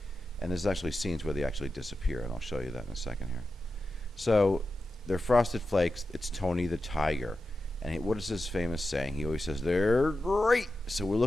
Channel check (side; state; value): both; normal; correlation 0.91